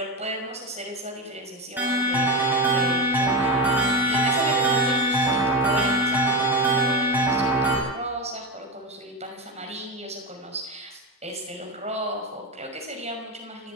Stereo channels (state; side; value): normal; both; correlation 0.17